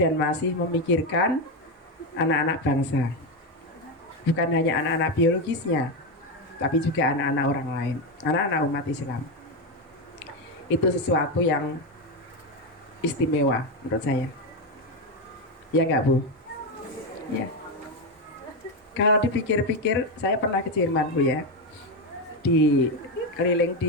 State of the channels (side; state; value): both; normal; correlation 0.10